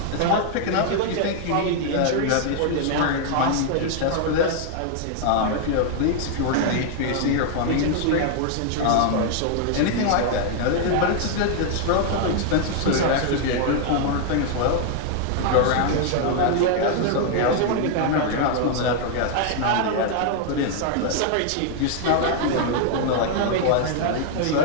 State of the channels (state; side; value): different; both; correlation 0.00